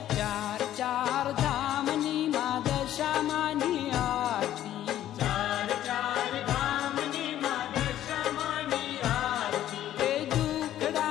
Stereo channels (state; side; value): quieter; right; 12.3 dB